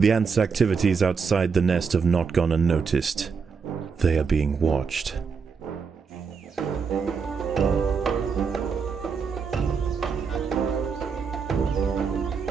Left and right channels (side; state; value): left; quieter; 5.6 dB